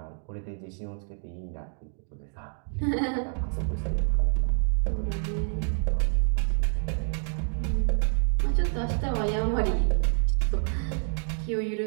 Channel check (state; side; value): silent; left; digital silence